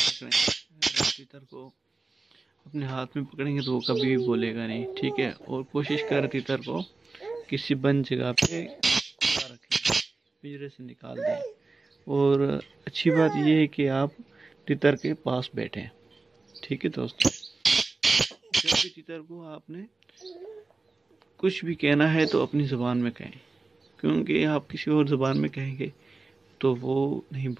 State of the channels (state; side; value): quieter; left; 3.7 dB